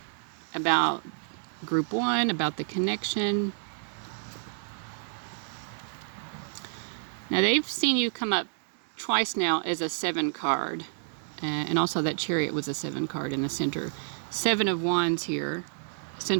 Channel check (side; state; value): left; silent; digital silence